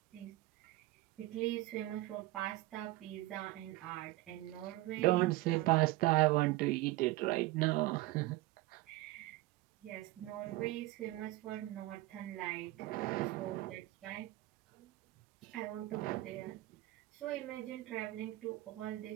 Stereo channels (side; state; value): left; quieter; 18.5 dB